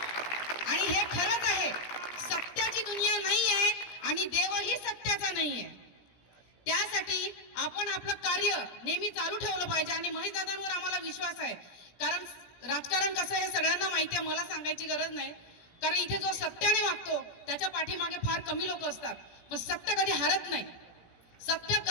आणि हे खरंच आहे, सत्याची दुनिया नाही आहे आणि देवही सत्याचा नाही आहे. त्यासाठी आपण आपलं कार्य नेहमी चालू ठेवलं पाहिजे. आणि महेशदादांवर आम्हाला विश्वास आहे, कारण राजकारण कसं आहे सगळ्यांना माहिती आहे, मला सांगायची गरज नाही. कारण इथे जो सत्याने वागतो त्याच्या पाठीमागे फार कमी लोक असतात, पण सत्य कधी हारत नाही. सत्य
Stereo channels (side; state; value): right; late; 17 ms